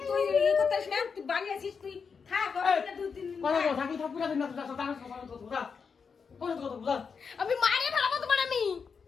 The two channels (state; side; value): quieter; right; 5.8 dB